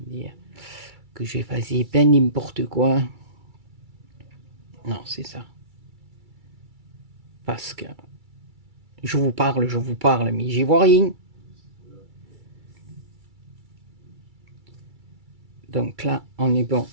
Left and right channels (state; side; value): late; left; 2.3 ms